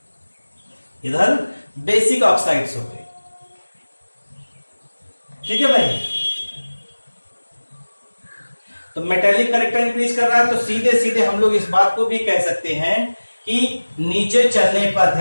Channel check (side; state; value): both; inverted; correlation -1.00